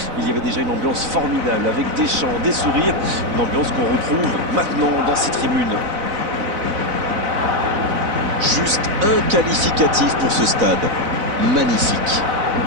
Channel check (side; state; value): left; late; 4.0 ms